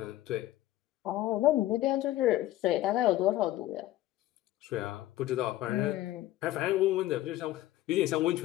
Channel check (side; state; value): right; quieter; 15.0 dB